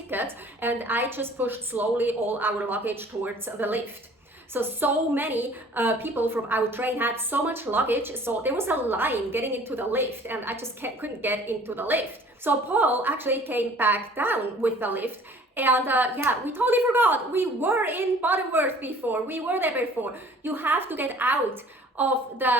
and I just pushed slowly all our luggage towards the lift. So many people from our train had so much luggage, so there was a line getting into the lift, and I just couldn't get into the lift. So Paul actually came back down with the lift, and yeah, we totally forgot. We were in Butterworth before. We were there before. You have to get out of the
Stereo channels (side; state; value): both; normal; correlation 0.51